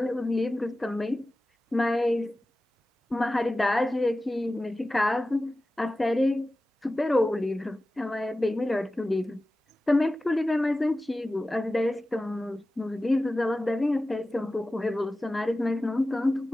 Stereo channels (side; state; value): both; normal; correlation 0.96